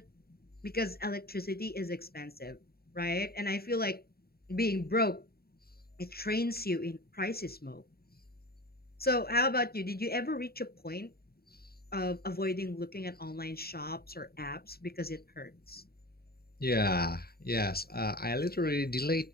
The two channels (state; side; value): late; right; 0.45 ms